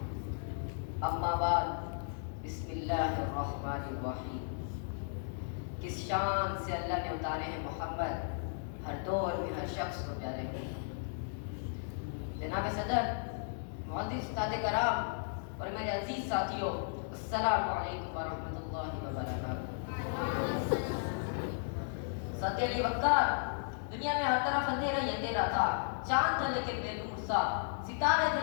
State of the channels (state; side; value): silent; right; digital silence